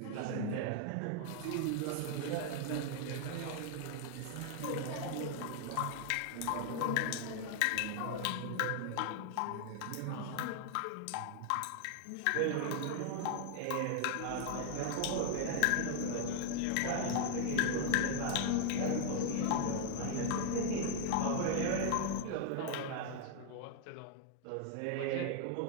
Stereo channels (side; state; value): both; different; correlation 0.00